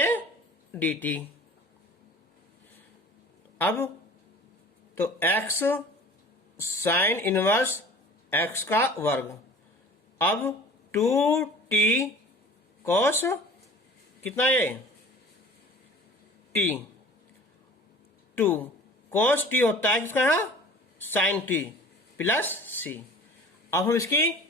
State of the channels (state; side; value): normal; both; correlation 0.44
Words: डी टी। अब तो एक्स साइन इनवर्स एक्स का वर्ग, अब 2t कोस कितना ये टी, 2 कोस टी होता है किसका, साइन टी प्लस सी। अब हम इसकी